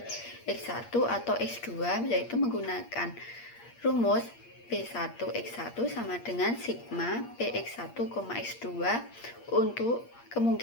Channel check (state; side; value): late; right; 8.5 ms